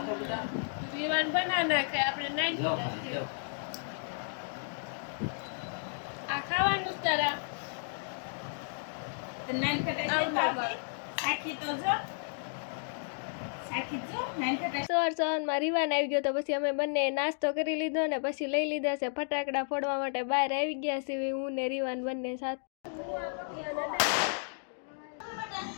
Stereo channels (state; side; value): silent; right; digital silence